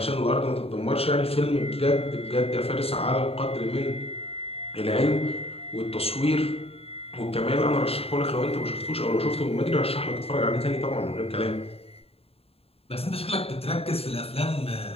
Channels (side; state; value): right; late; 0.28 ms